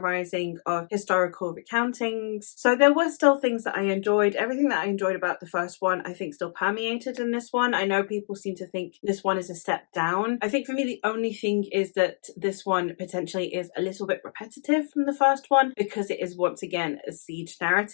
of historical recountings. So there were still things that I enjoyed. Everything that I enjoyed about the first one, I think, still permeated in this one. I know people seem to think this one is a step down. I think for me, the only thing is that this one potentially is a little bit repetitive from the first one, because it is, once again, a siege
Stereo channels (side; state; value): right; silent; digital silence